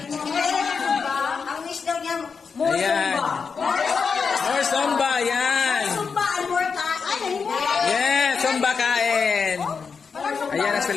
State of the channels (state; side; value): quieter; right; 5.5 dB